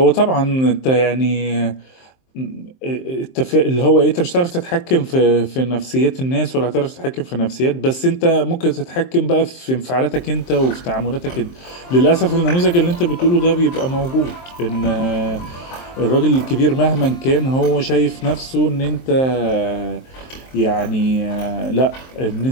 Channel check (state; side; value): late; right; 23 ms